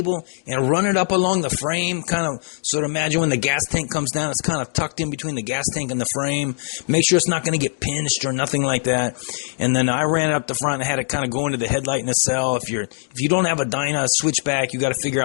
and run it up along the frame, kind of sort of imagine when the gas tank comes down, it's kind of tucked in between the gas tank and the frame. Make sure it's not going to get pinched or nothing like that. And then I ran it up the front and had it kind of go into the headlight nacelle. If you don't have a Dyna switchback, you got to figure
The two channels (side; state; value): right; silent; 62 dB below the other